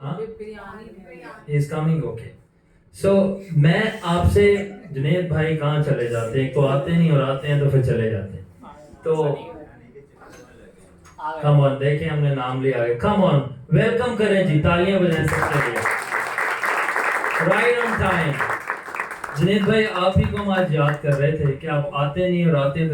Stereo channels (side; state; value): both; identical; correlation 1.00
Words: He is coming, okay. So मैं आपसे, जुनैद भाई कहाँ चले जाते हैं? एक तो आते नहीं और आते हैं तो फिर चले जाते हैं। तो कम ऑन, देखें हमने नाम लिया है, कम ऑन वेलकम करें जी, तालियां बजाएं सबके लिए। Right on time. जुनैद भाई आप ही को हम आज याद कर रहे थे कि आप आते नहीं और आते हैं